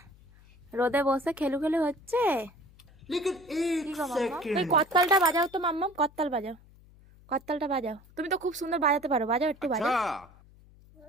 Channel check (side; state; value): left; noise; hum, 25 dB below the sound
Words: রোদে বসে খেলু খেলু হচ্ছে। लेकिन एक কি গো মাম্মা, सेकंड এই করতালটা বাজাও তো মাম্মা, করতাল বাজাও, করতালটা বাজাও। তুমি তো খুব সুন্দর বাজাতে পারো, বাজাও একটু বাজাও।